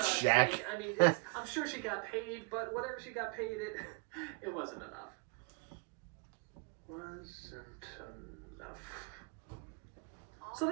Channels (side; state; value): left; quieter; 30.8 dB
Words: check. sake, I mean, I'm sure she got paid, but whatever she got paid, it wasn't enough. Wasn't enough. So